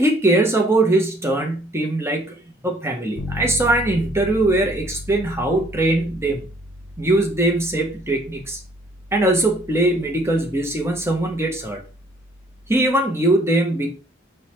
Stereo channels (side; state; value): both; normal; correlation 0.61